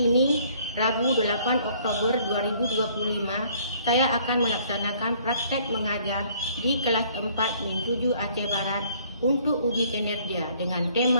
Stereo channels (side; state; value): both; inverted; correlation -0.60